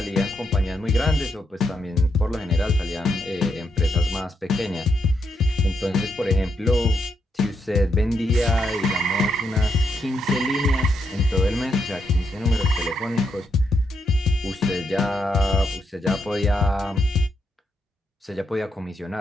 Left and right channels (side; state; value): both; normal; correlation 0.80